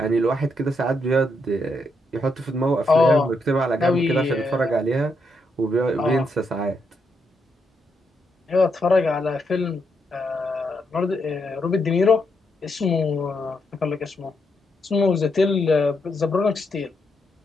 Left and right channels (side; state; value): both; normal; correlation 0.79